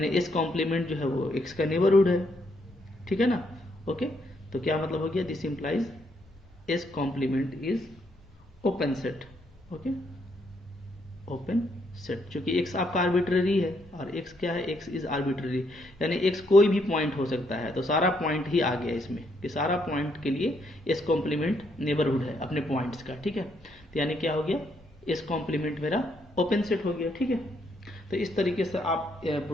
इस कॉम्प्लीमेंट जो है वो x का नेबरहुड है। ठीक है ना, ओके, तो क्या मतलब हो गया, this implies S complement is open set. Okay, open set, चूंकि x आपका आर्बिट्ररी है और x क्या है, x इज आर्बिट्ररी, यानी x कोई भी पॉइंट हो सकता है, तो सारा पॉइंट ही आ गया इसमें, कि सारा पॉइंट के लिए इस कॉम्प्लीमेंट नेबरहुड है अपने पॉइंट्स का। ठीक है, तो यानी क्या हो गया, इस कॉम्प्लीमेंट मेरा ओपन सेट हो गया। ठीक है, तो इस तरीके से आप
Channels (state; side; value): normal; both; correlation 0.74